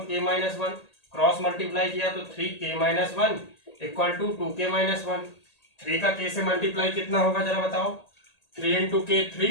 k minus 1, cross multiply किया तो 3k minus 1 equal to 2k minus 1। 3 का k से मल्टीप्लाई कितना होगा जरा बताओ, 3 इंटू k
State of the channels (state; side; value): late; right; 1.8 ms